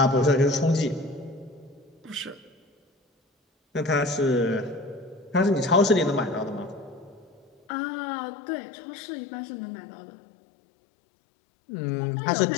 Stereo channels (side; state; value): right; drops out; at 7.5 s